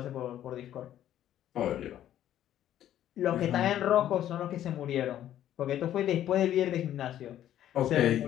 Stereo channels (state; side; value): quieter; right; 11.7 dB